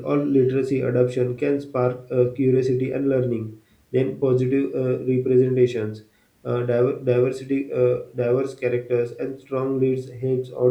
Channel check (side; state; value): both; identical; correlation 1.00